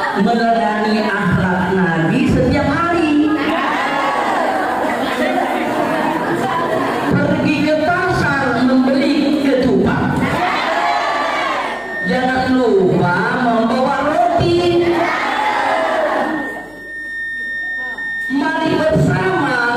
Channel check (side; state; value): left; noise; hum, 30 dB below the sound